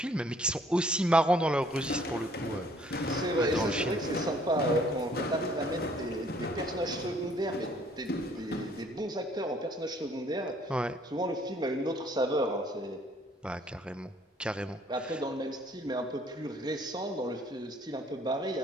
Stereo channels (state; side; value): normal; both; correlation 0.61